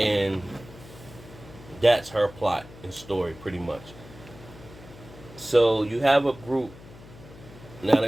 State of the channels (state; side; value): noise; left; hum, 19 dB below the sound